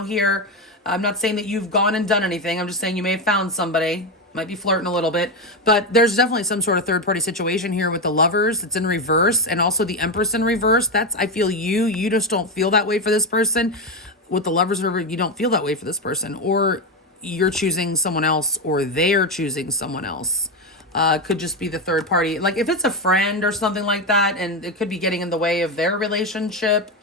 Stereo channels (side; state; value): both; normal; correlation 0.11